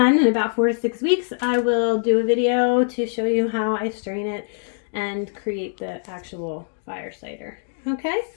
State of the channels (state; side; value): silent; right; digital silence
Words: in about 4 to 6 weeks, I will do a video to show you how I strain it and create the actual fire cider. Okay?